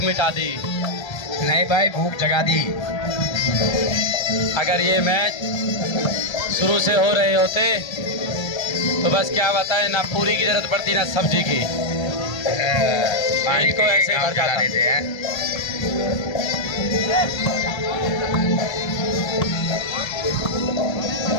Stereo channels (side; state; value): right; late; 1.3 ms